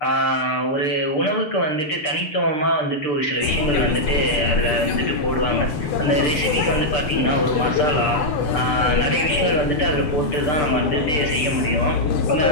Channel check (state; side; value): late; right; 6.7 ms